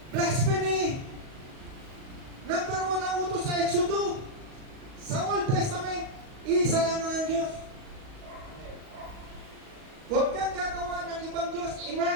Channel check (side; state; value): left; late; 38 ms